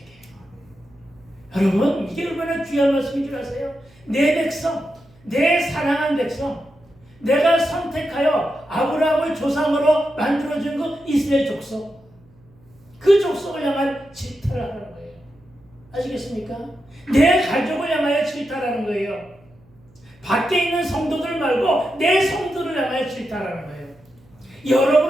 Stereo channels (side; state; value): right; noise; hum, 29 dB below the sound